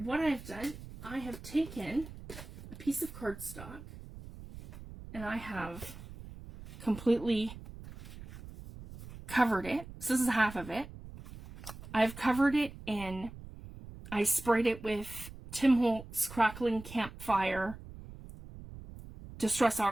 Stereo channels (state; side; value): noise; right; rumble, 14 dB below the sound